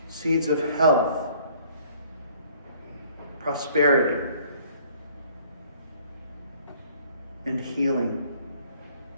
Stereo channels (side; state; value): both; inverted; correlation -0.57